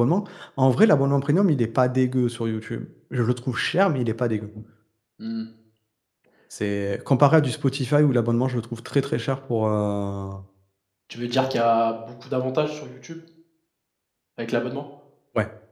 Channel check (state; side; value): identical; both; correlation 1.00